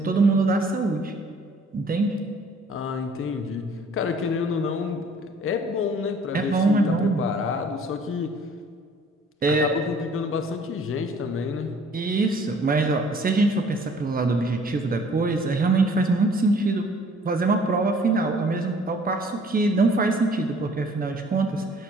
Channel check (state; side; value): normal; both; correlation 0.55